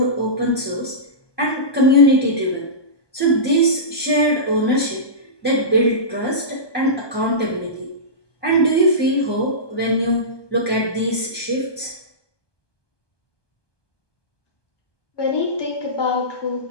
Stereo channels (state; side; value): late; right; 1.2 ms